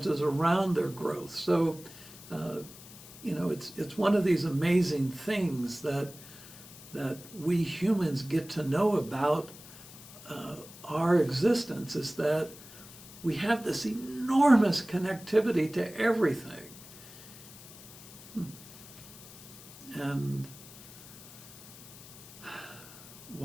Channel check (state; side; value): noise; left; hiss, 17 dB below the sound